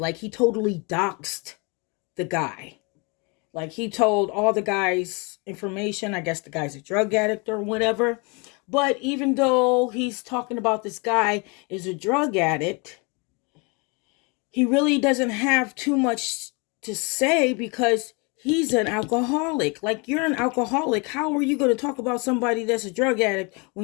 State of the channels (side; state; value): right; quieter; 30.8 dB